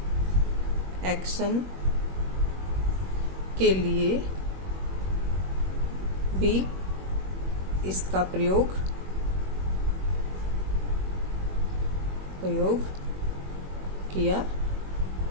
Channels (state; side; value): late; left; 21 ms